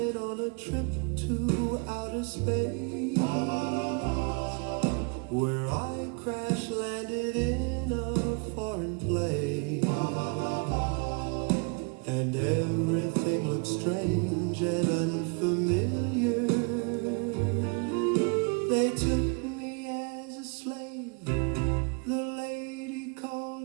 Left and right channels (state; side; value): quieter; left; 32.3 dB